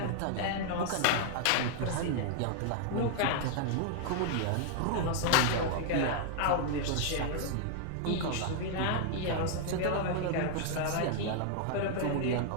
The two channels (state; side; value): different; both; correlation 0.00